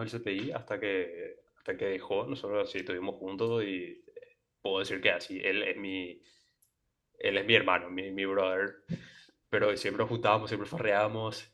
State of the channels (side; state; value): both; identical; correlation 1.00